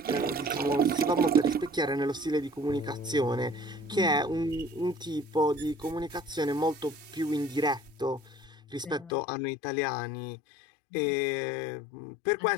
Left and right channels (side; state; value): right; drops out; at 9.1 s